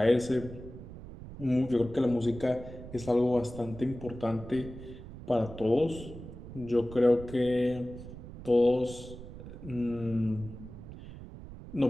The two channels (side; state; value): right; noise; rumble, 13 dB below the sound